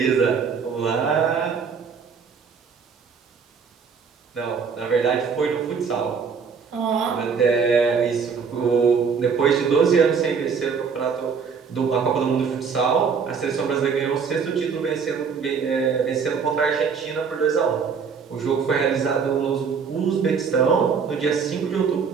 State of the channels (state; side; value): quieter; left; 6.0 dB